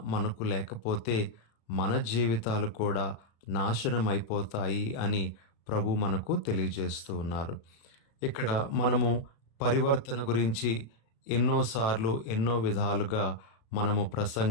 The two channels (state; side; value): late; right; 36 ms